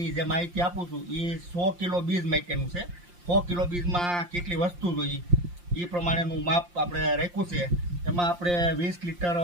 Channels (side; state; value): left; late; 5.7 ms